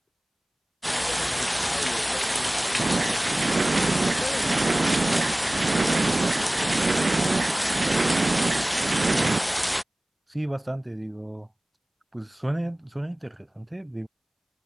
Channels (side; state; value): both; normal; correlation 0.98